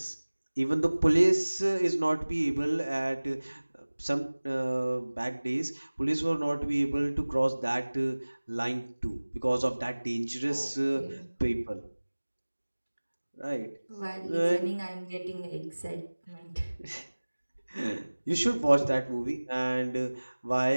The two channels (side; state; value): both; inverted; correlation -1.00